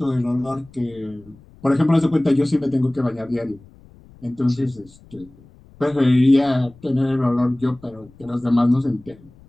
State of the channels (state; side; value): noise; left; rumble, 25 dB below the sound